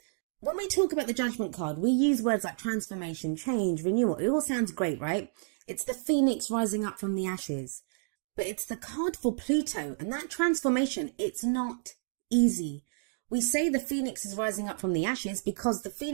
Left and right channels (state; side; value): silent; left; digital silence